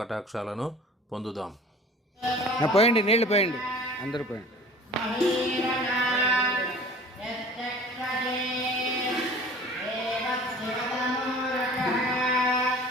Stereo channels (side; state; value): both; normal; correlation 0.44